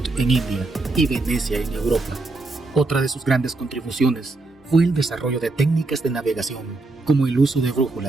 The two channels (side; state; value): left; quieter; 3.2 dB